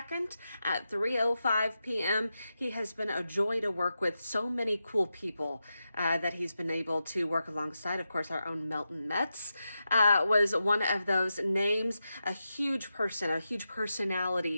at 3:05 p.m. He has been a joy to work with. So many cool people that he's been able to work alongside. Of course, our own Melton Metz was one of those names. A huge person, a huge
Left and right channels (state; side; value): inverted; both; correlation -0.89